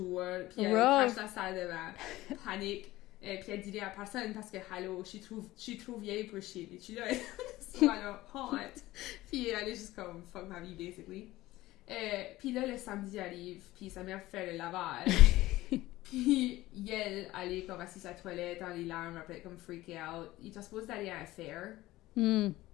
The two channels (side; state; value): right; quieter; 17.3 dB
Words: Puis elle crache la salle de bain. Panique. Puis elle dit à personne parce que, hello, je suis trop vieille pour chier. Puis tu là, alors, honte. Puis elle est juste comme, fuck ma vie, basically. Puis là, le samedi arrive, puis sa mère fait le lavage. Puis elle est comme assise à la toilette, dans les larmes, après comme freaké out. Il était supposé d'aller à un fair.